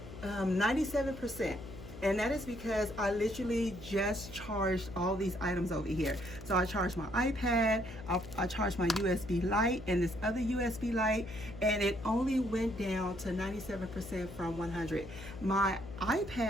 97%. And that is because I literally just charged all these items over here. So I charged my iPad, I charged my USB light and this other USB light, and it only went down to 97% from 100. My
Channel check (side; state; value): left; noise; hum, 13 dB below the sound